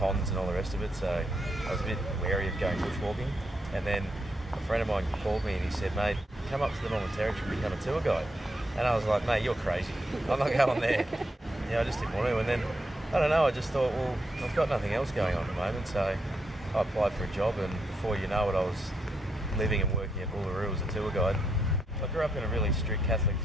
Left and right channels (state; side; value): normal; both; correlation 0.79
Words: and all the rest of it, so I was a bit wary of going bushwalking. And then a friend of mine called me and he said, "Mate, come up to the Northern Territory and become a tour guide." And I was like, "Mate, you're crazy. I'm not going there." I just didn't want to. And then, I don't know, I just thought, well, I've got nothing else going on at the moment, so I applied for a job, and before you know it, I was living and working at Uluru as a tour guide. I grew up in a really strict Catholic